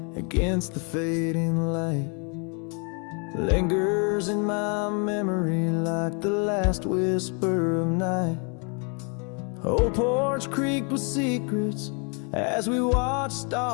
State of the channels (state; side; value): quieter; right; 36.9 dB